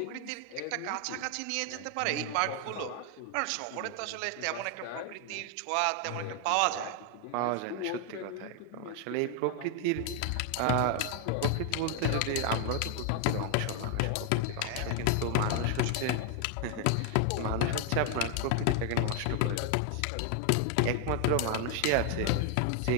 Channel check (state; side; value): different; both; correlation 0.00